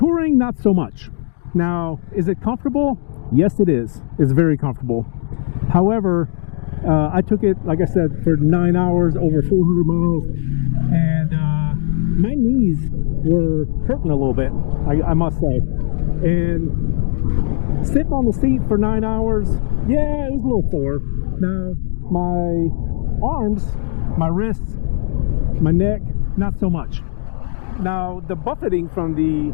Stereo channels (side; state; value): right; silent; digital silence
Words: not so much. Now, is it comfortable? Yes, it is. It's very comfortable. However, I took it, like I said, for 9 hours, over 400 miles, and my knees were hurting a little bit, I must say. And sitting on the seat for 9 hours, yeah, it was a little sore. Now, my arms, my wrists, my neck, not so much. Now, the buffeting from the